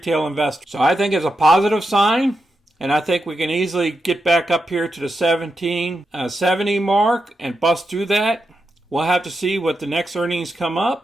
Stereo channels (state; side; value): normal; both; correlation 0.87